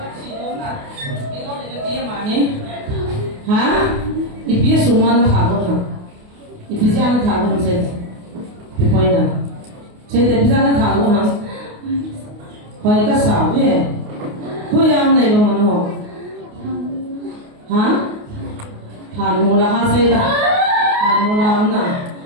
Hả? Ipia suma na thago na. Ipia na thago na sen. Ipoi na. Sen ipia na thago na. Hoi ka sa ve. Hoi am nei ba man ho. Hả? Than mo la ha se ta. Than mo la am na.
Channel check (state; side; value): late; left; 28 ms